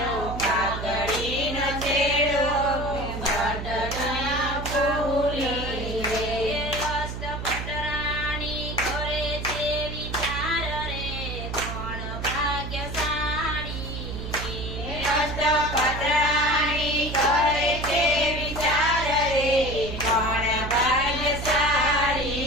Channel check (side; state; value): right; noise; hum, 6 dB below the sound